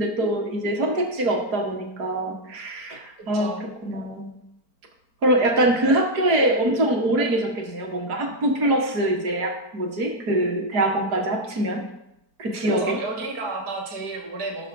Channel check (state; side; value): late; left; 4.4 ms